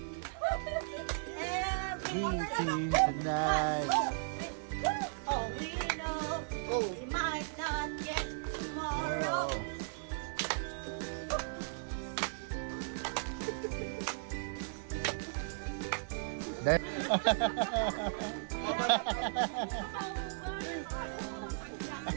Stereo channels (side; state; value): left; silent; digital silence